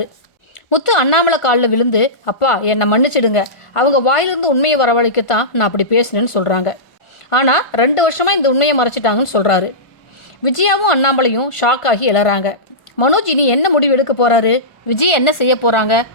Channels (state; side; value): late; right; 1.4 ms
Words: முத்து அண்ணாமலை காலில் விழுந்து, அப்பா என்னை மன்னிச்சிடுங்க, அவங்க வாயிலிருந்து உண்மையை வரவழைக்கத்தான் நான் அப்படி பேசினேன்னு சொல்கிறாங்க. ஆனால் 2 வருஷமாக இந்த உண்மையை மறைச்சிட்டாங்கன்னு சொல்கிறாரு. விஜயாவும் அண்ணாமலையும் ஷாக் ஆகி எழறாங்க. மனோஜ் இனி என்ன முடிவு எடுக்க போகிறாரு? விஜய் என்ன செய்ய போகிறாங்க?